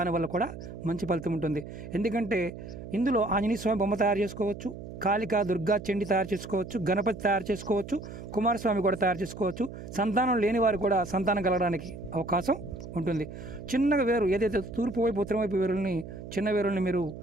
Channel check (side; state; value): right; noise; hum, 11 dB below the sound